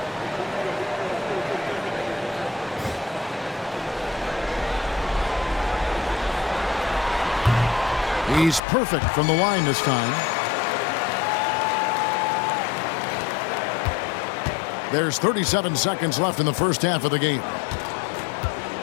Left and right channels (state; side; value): drops out; right; at 8.6 s